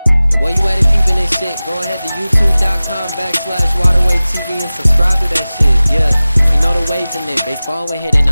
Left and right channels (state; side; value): inverted; both; correlation -0.97